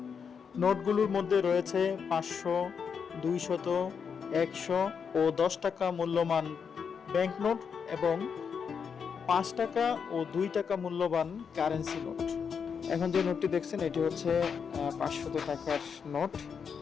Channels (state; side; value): quieter; right; 6.5 dB